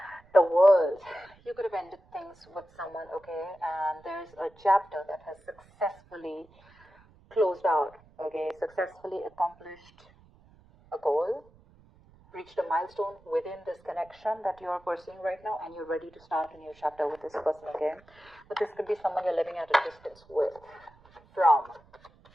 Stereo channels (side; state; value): right; noise; rumble, 27 dB below the sound